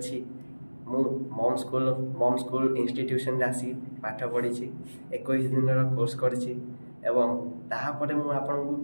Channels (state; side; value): inverted; both; correlation -1.00